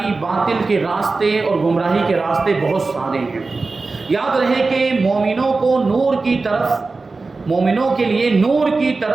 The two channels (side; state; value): left; quieter; 3.8 dB